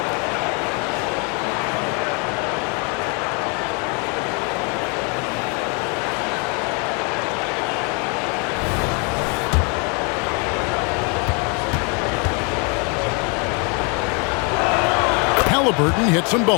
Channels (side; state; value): right; quieter; 34.3 dB